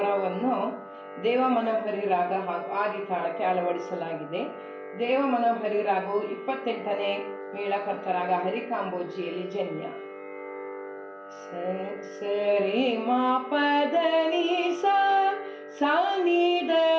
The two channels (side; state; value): both; identical; correlation 1.00